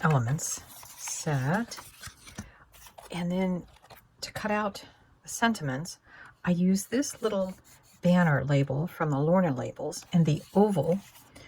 Elements set, and then to cut out the sentiments, I used this little banner label from the Lorna Labels and the oval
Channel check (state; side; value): identical; both; correlation 1.00